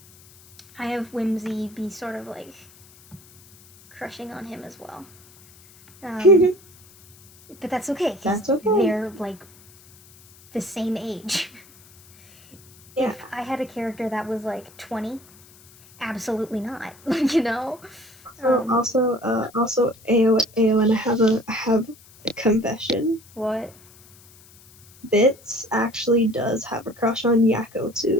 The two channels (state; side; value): noise; left; hiss, 25 dB below the sound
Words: have Whimsy be sort of, like, crushing on him as well. But that's okay, because they're, like, the same age. Yeah. If I had a character that was, like, 20, absolutely not. You know? Also, Eowyn, I have a confession. What? Bits actually does have a crush on Yakko,